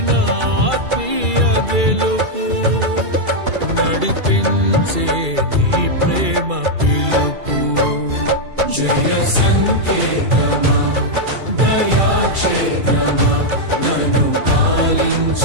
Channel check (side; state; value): left; late; 2.3 ms